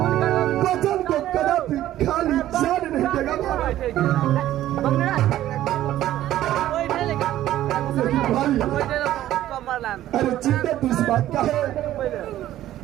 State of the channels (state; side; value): quieter; left; 13.4 dB